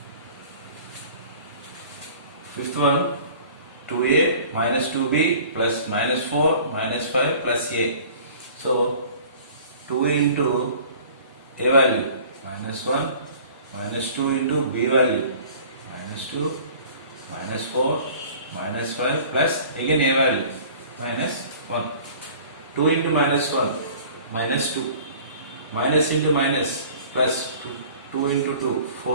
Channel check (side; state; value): both; inverted; correlation -0.47